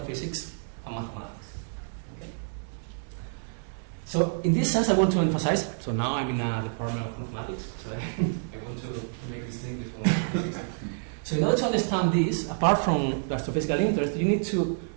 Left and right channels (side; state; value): left; silent; digital silence